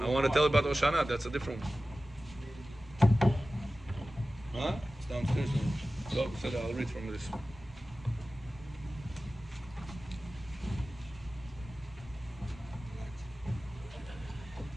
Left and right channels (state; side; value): normal; both; correlation 0.96